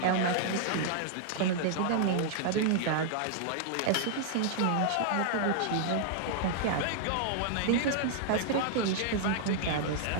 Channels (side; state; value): both; different; correlation -0.01